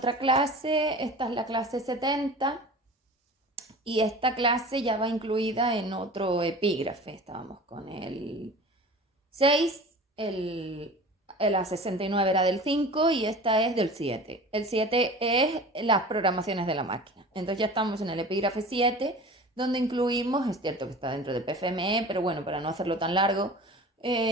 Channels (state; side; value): normal; both; correlation 0.38